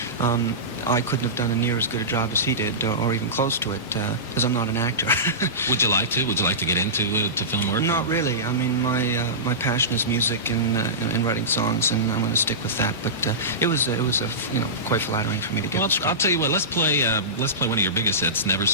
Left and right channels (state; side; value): normal; both; correlation -0.19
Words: I couldn't have done a near as good a job as he did, or even close to it, because I'm not an actor. Would you like to? Would you like to get into film work? Not really. I mean, my passion is music and writing songs, and I'm going to stick with that. But it was quite flattering for me to get. Well, I'll tell you what. Let's play one of your biggest hits, Never